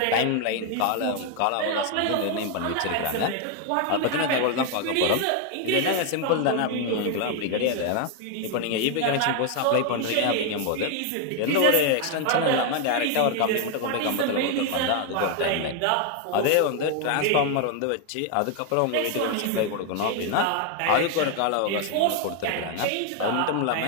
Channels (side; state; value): both; different; correlation 0.01